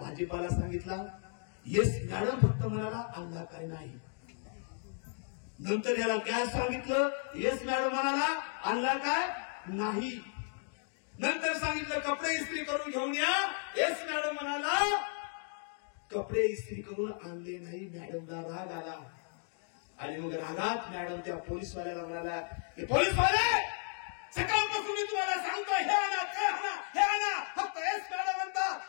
सांगितला. येस मॅडम फक्त म्हणाला आणला काय नाही. नंतर याला गॅस सांगितलं. येस मॅडम म्हणाला आणला काय नाही. नंतर सांगितलं कपडे इस्त्री करून घेऊन या. येस मॅडम म्हणाला कपडे इस्त्री करून आणले नाही. मॅडमला राग आला आणि मग रागात मॅडम त्या पोलीसवाल्याला म्हणाला की पोलीसवाले सकाळपासून मी तुम्हाला सांगतो हे आणा ते आणा हे आणा फक्त येस मॅडम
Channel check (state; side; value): silent; right; 55 dB below the other